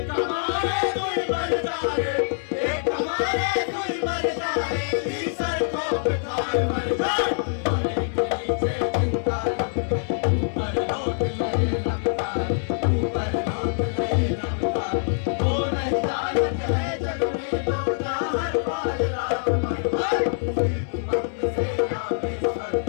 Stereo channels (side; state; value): right; silent; 62 dB below the other